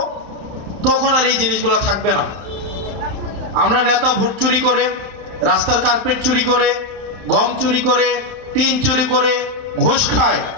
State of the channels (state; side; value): late; left; 31 ms